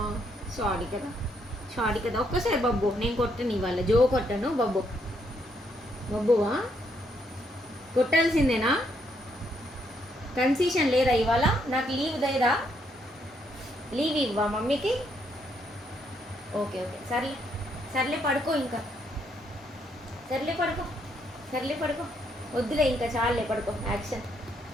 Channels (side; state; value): both; normal; correlation 0.73